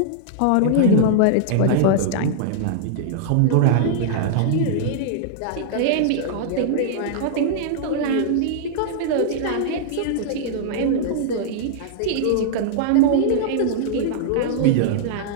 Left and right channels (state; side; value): different; both; correlation -0.01